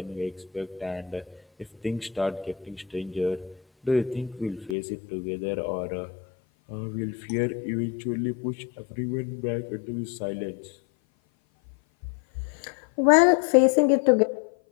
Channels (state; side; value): drops out; right; at 4.8 s